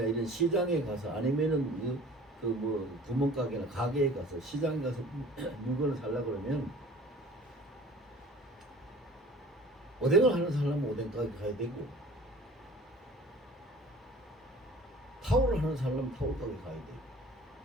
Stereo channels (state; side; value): normal; both; correlation 0.46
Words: 이런 시장에 가서, 아니면은 그 뭐 구멍가게나 가게에 가서, 시장에 가서 물건을 살라 그러면 오뎅을 하는 사람은 오뎅 가게 가야 되고, 타올을 하는 사람은 타올 가게 가야 되고,